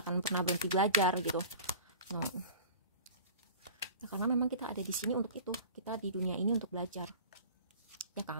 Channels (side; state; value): both; inverted; correlation -0.40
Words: akan pernah berhenti belajar gitu. Nah, karena memang kita ada di sini untuk itu, kita di dunia ini untuk belajar, ya